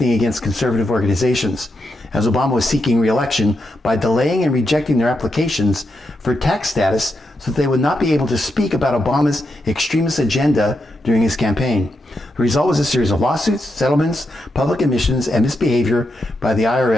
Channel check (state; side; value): normal; both; correlation 0.84